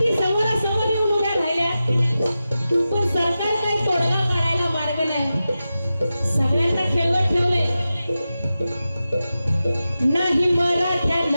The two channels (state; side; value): inverted; both; correlation -0.92